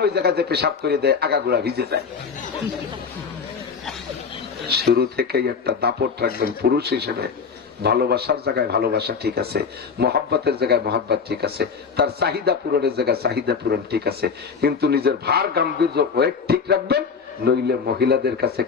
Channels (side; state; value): right; quieter; 5.8 dB